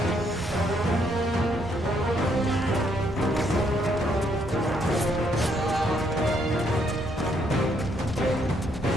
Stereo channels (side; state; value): both; normal; correlation 0.71